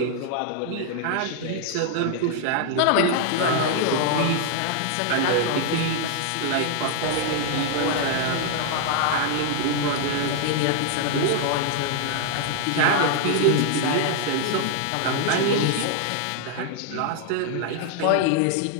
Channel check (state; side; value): different; both; correlation -0.01